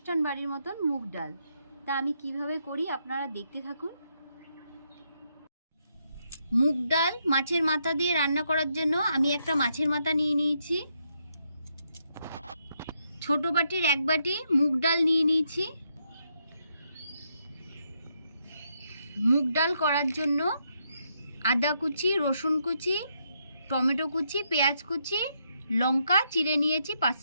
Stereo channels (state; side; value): inverted; both; correlation -0.78